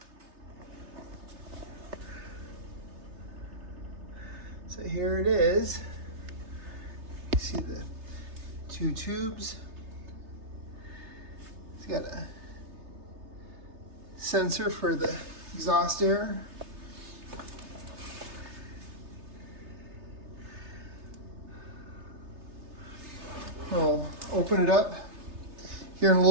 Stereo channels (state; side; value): late; left; 3.3 ms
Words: So here it is. You see the two tubes. It's got a sensor for the exhaust air. I'll open it up here in a